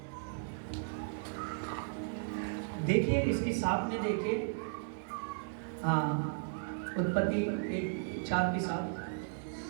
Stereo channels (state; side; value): silent; left; digital silence